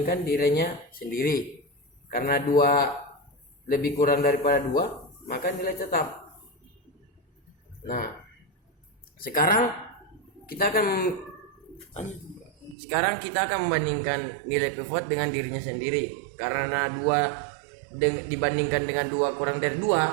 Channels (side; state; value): left; drops out; at 12.8 s